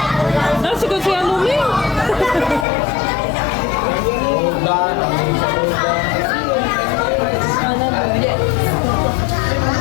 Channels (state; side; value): drops out; right; at 2.7 s